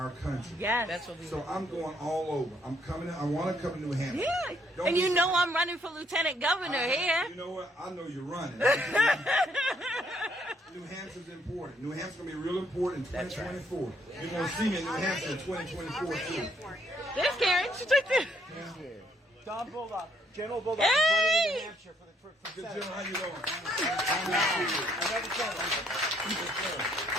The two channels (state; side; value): normal; both; correlation 0.69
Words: country. Yes. That's what we So I'm going all over. I'm coming. I want to come to New Hampshire. Yeah. Don't And you be- know I'm running for lieutenant governor here. You know what? I know you're running. New Hampshire's important. New Hampshire's going to be real important in 2024. You're going to see me in New Hampshire in 2024 too. There's Karen. She's right there. Don Bulldog, General Bulldog, Hey! is running in New Hampshire for Good Senate. General, how you doing?